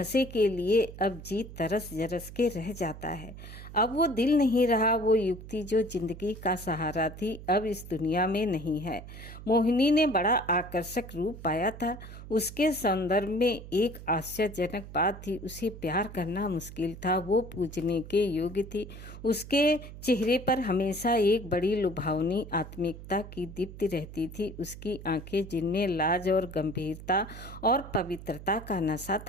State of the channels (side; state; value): right; noise; hum, 13 dB below the sound